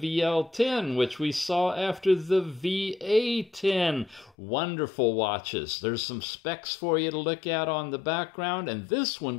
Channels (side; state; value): right; drops out; at 4.3 s